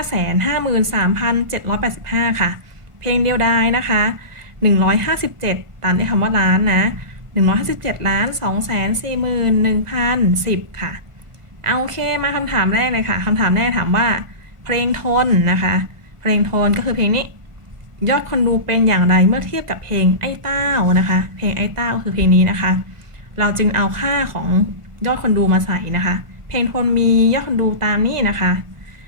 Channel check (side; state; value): left; late; 1.5 ms